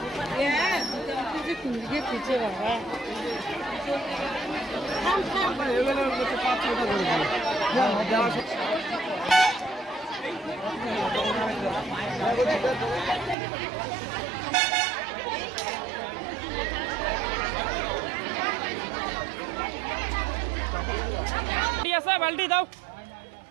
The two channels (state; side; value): drops out; left; at 13.4 s